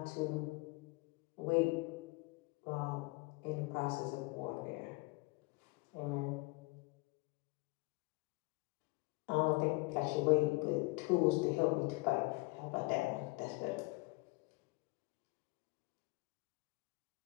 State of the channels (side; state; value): right; quieter; 25.4 dB